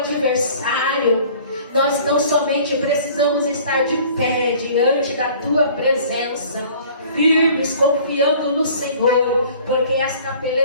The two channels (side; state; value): both; inverted; correlation -0.50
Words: Nós não somente precisamos estar de pé diante da tua presença, firmes, confiando no Senhor, porque esta